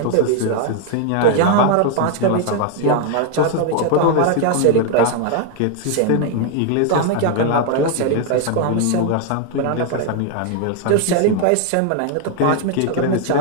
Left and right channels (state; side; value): different; both; correlation 0.01